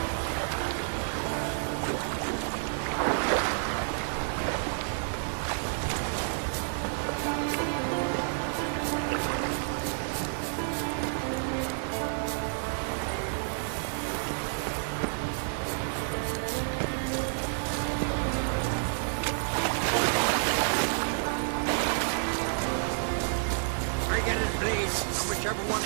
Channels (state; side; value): silent; left; digital silence